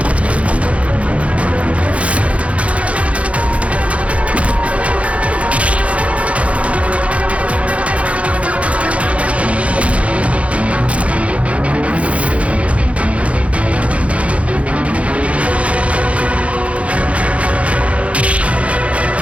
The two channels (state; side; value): late; left; 0.063 ms